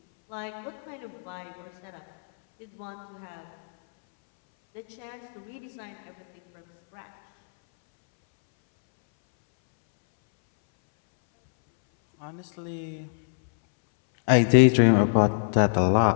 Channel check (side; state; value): right; silent; 62 dB below the other